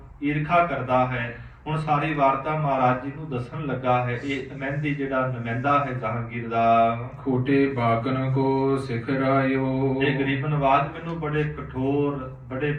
ਈਰਖਾ ਕਰਦਾ ਹੈ। ਹੁਣ ਸਾਰੀ ਵਾਰਤਾ ਮਹਾਰਾਜ ਜੀ ਨੂੰ ਦੱਸਣ ਲੱਗਾ ਹੈ। ਇਹ ਮਹਿੰਦੀ ਜਿਹੜਾ ਨੁਮਾਇੰਦਾ ਹੈ ਜਹਾਂਗੀਰ ਦਾ। ਖੋਟੇ ਬਾਕਨ ਕੋ ਸਿਖਰਾਇਓ। ਇਹ ਗਰੀਬ ਨਵਾਜ ਮੈਨੂੰ ਬੜੇ ਕਠੋਰ ਬੜੇ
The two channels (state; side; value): identical; both; correlation 1.00